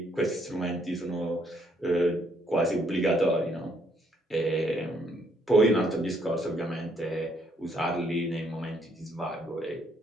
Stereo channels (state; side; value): normal; both; correlation 0.70